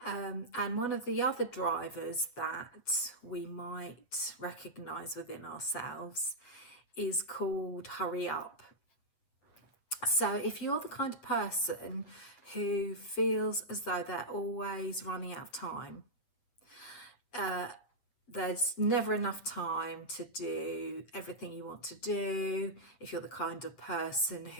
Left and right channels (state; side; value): late; right; 8.4 ms